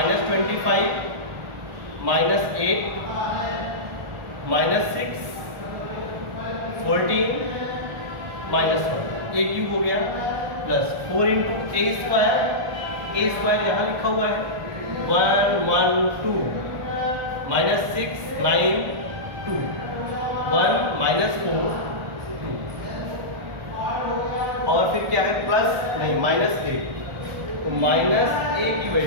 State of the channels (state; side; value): late; left; 1.4 ms